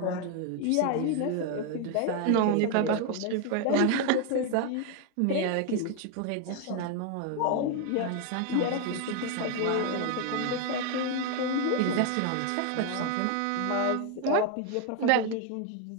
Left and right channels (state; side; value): different; both; correlation 0.01